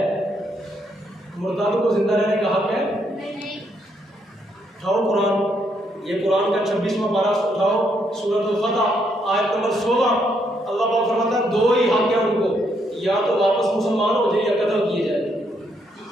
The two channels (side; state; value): both; normal; correlation 0.74